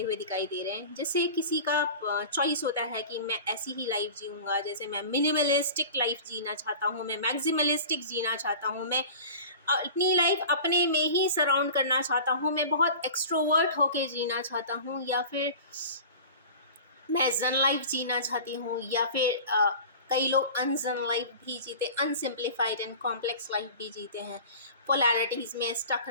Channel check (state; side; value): inverted; both; correlation -0.37